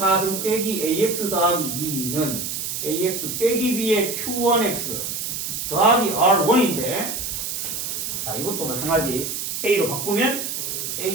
빼기 AX 더하기 2는 AX 빼기 B의 Q1X 더하기 R1인데 자, 이것도 마찬가지 A로 바꾸면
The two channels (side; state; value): right; noise; hiss, 4 dB below the sound